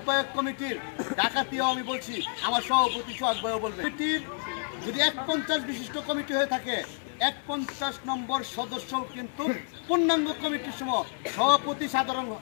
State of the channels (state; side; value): silent; right; digital silence